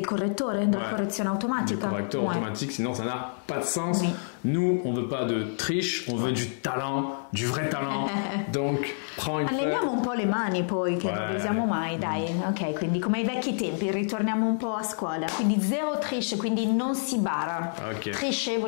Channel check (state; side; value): silent; right; digital silence